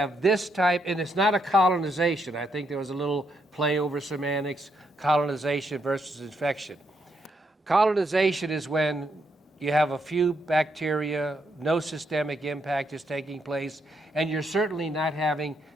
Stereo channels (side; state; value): both; normal; correlation 0.78